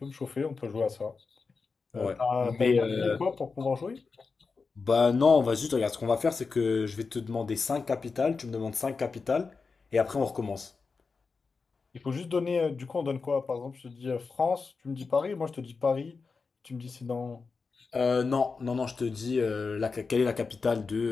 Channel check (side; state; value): right; quieter; 4.6 dB